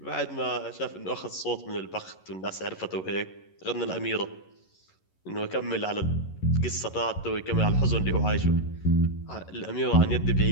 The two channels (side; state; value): right; late; 11 ms